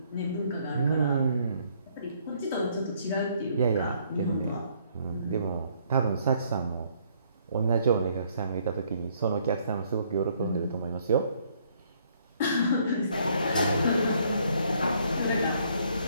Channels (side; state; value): both; inverted; correlation -0.66